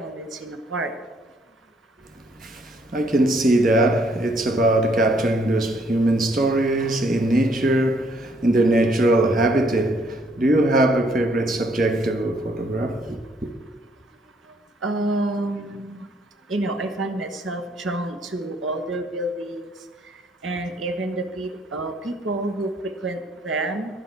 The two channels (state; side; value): normal; both; correlation 0.67